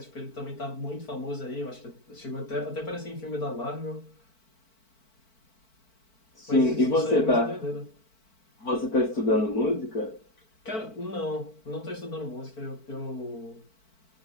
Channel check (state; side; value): late; right; 4.5 ms